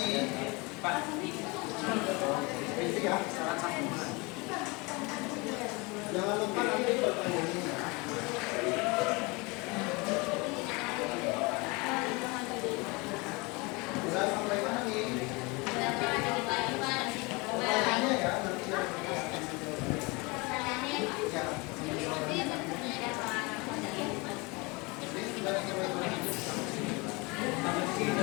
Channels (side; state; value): right; quieter; 26.7 dB